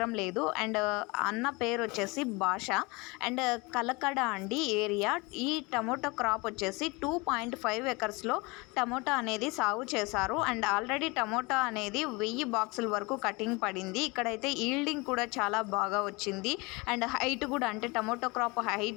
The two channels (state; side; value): quieter; right; 25.8 dB